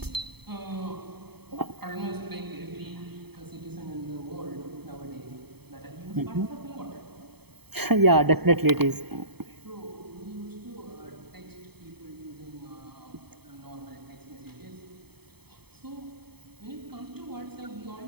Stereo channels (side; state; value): left; late; 0.97 ms